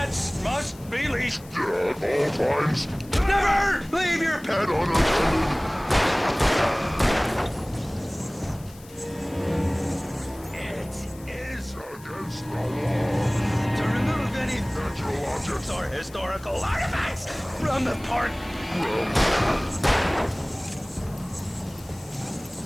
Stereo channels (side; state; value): left; noise; hiss, 22 dB below the sound